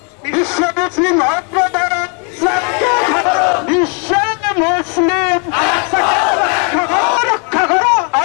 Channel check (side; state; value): right; quieter; 37.3 dB